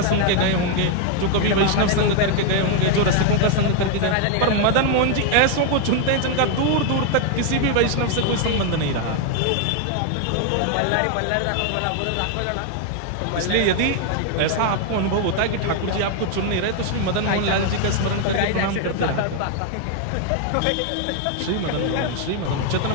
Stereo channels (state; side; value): different; both; correlation 0.00